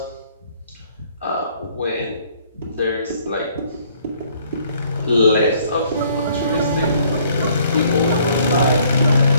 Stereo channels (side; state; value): both; inverted; correlation -0.62